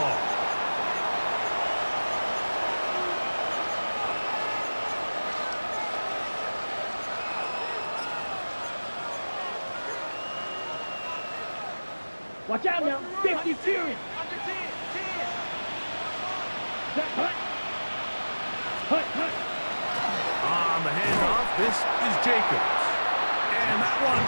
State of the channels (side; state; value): both; inverted; correlation -1.00